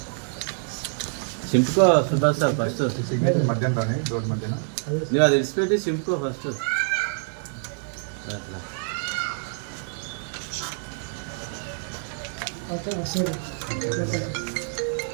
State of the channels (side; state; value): left; silent; digital silence